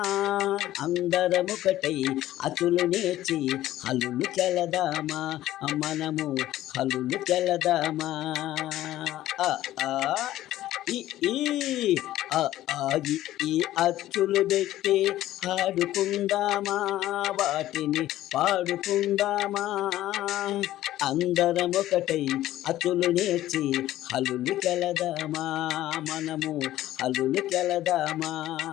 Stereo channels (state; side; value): quieter; right; 14.3 dB